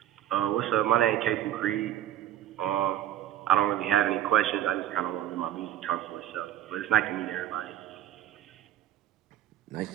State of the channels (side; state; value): left; quieter; 12.2 dB